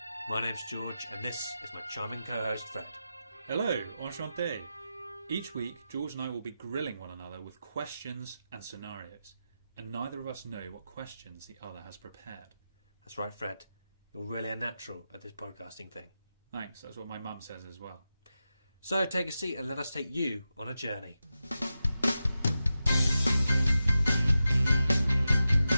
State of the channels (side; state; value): both; inverted; correlation -0.91